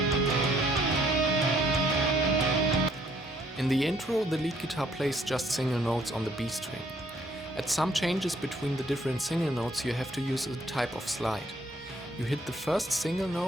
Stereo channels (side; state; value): both; normal; correlation 0.65